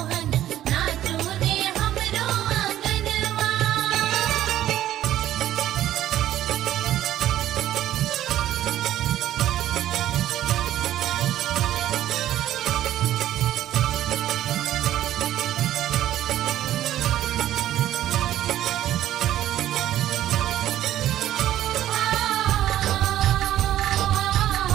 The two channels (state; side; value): quieter; left; 12.8 dB